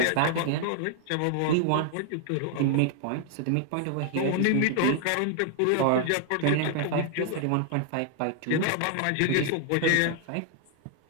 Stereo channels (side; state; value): both; different; correlation 0.00